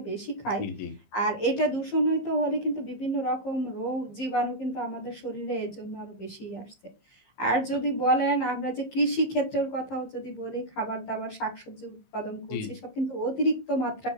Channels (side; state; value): right; late; 15 ms